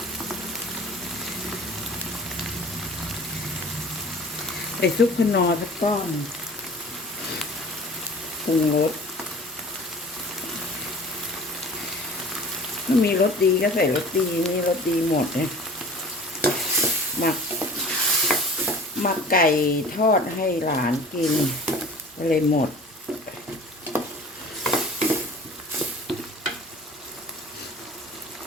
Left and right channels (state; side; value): normal; both; correlation 0.43